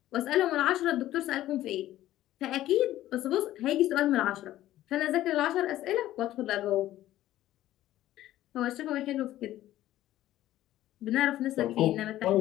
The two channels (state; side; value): quieter; right; 14.1 dB